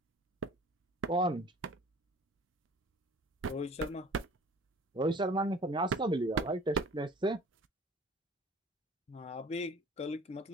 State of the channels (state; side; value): normal; both; correlation 0.47